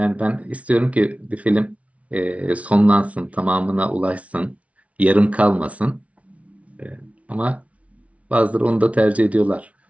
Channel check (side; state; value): left; late; 0.065 ms